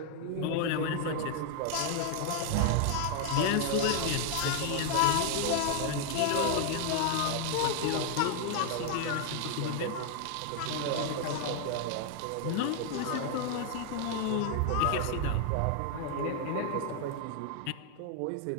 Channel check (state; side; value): different; both; correlation 0.00